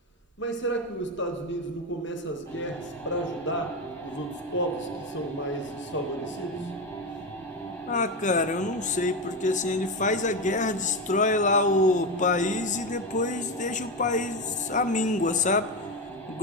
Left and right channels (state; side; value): normal; both; correlation 0.15